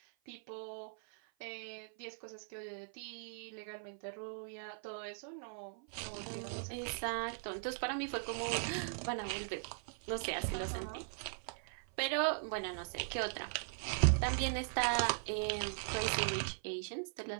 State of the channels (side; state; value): left; silent; 51 dB below the other